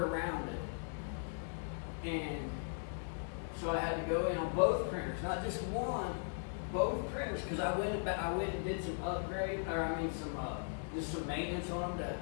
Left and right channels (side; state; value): right; silent; digital silence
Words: it. And so I had to go in on both printers, not just one, both printers, because I went and did some upgrade, just some maintenance on them